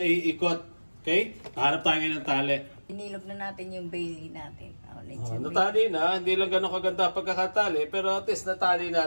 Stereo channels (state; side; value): inverted; both; correlation -1.00